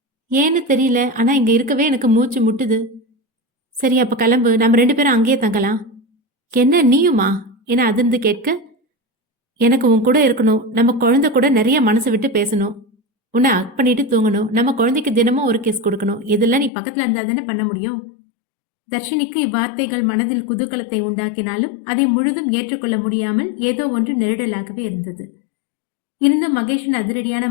ஏன்னு தெரியல, ஆனால் இங்கே இருக்கவே எனக்கு மூச்சு முட்டுது. சரி, அப்போ கிளம்பு, நம்ம 2 பேரும் அங்கேயே தங்கலாம். என்ன நீயுமா என அதிர்ந்து கேட்க, எனக்கு உன் கூட இருக்கணும். நம்ம குழந்தை கூட நிறைய மனசு விட்டு பேசணும். உன்னை அக் பண்ணிட்டு தூங்கணும். நம்ம குழந்தைக்கு தினமும் ஒரு கிஸ் கொடுக்கணும். இதெல்லாம் நீ பக்கத்தில் இருந்தால் தானே பண்ண முடியும். தர்ஷினிக்கு இவ்வார்த்தைகள் மனதில் குதூகலத்தை உண்டாக்கினாலும் அதை முழுதும் ஏற்றுக்கொள்ள முடியாமல் ஏதோ ஒன்று நெருடலாகவே இருந்தது. இருந்தும் மகேஷின் அதிரடியான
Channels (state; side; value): drops out; right; at 16.7 s